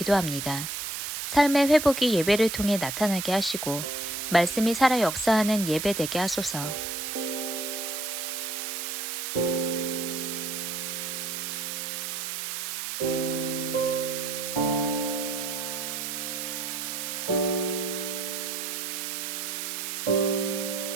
삶의 회복이 예배를 통해 나타나게 하시고 말씀이 살아 역사하는 예배 되게 하소서.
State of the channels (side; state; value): right; noise; hiss, 4 dB below the sound